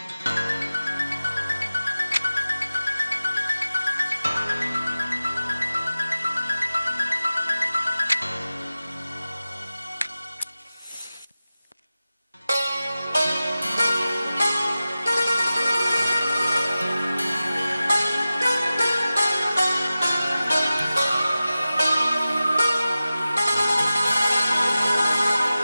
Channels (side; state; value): both; inverted; correlation -0.95